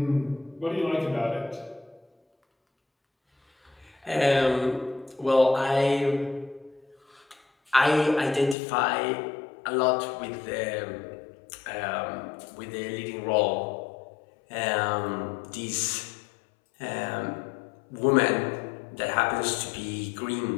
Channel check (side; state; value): right; drops out; at 8.6 s